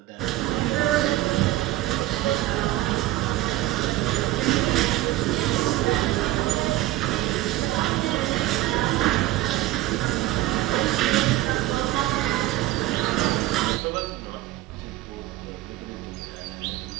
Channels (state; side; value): quieter; left; 16.1 dB